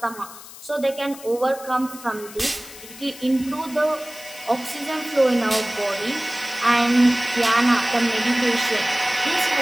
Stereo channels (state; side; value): noise; left; hiss, 16 dB below the sound